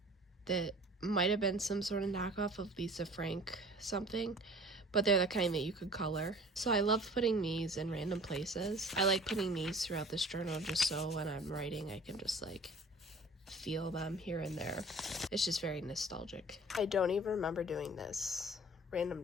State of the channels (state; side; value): normal; both; correlation 0.46